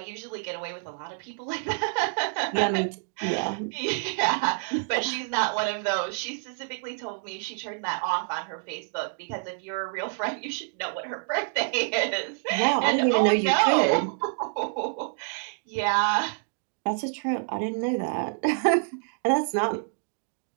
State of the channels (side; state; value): left; silent; digital silence